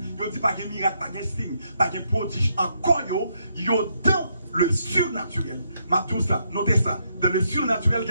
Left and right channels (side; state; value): both; inverted; correlation -0.77